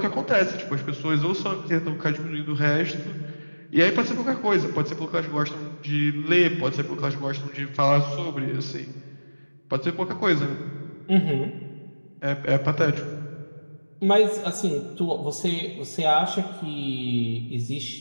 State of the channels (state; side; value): inverted; both; correlation -1.00